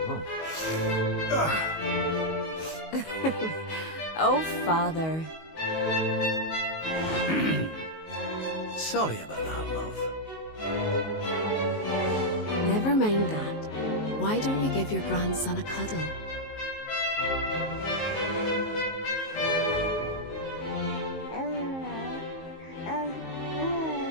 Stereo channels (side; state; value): right; late; 19 ms